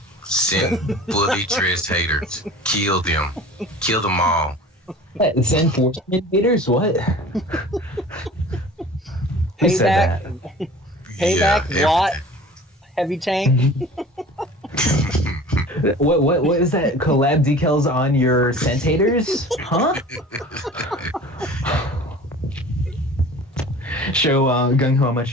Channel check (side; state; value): both; normal; correlation 0.42